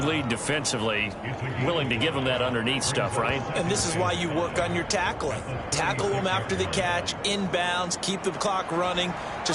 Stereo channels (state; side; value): identical; both; correlation 1.00